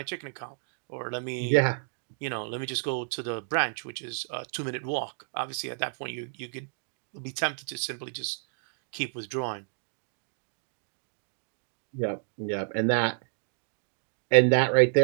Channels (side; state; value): left; silent; digital silence